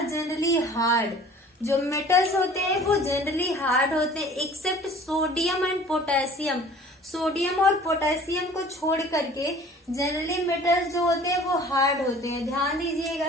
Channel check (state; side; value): normal; both; correlation 0.48